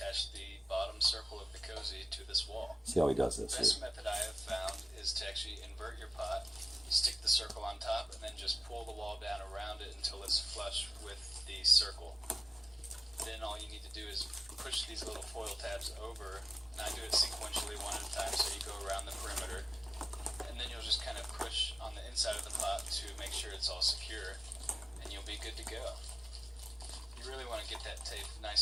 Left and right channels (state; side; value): normal; both; correlation 0.96